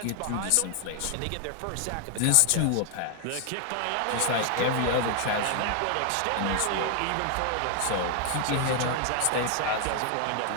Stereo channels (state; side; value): different; both; correlation 0.00